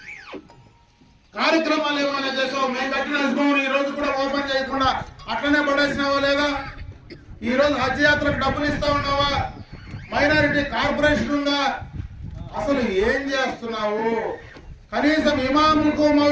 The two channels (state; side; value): identical; both; correlation 1.00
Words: కార్యక్రమాలు ఏమైనా చేసావు? మేము కట్టిన హజ్ భవన్ ఈ రోజు కూడా ఓపెన్ చేయకుండా అట్లనే పడేసినావా లేదా? ఈ రోజు హజ్ యాత్రకు డబ్బులు ఇస్తా ఉన్నావా? మైనారిటీ కార్పొరేషన్ ఉందా? అసలు ఏం చేస్తున్నావు? కనీసం ఇమాములకు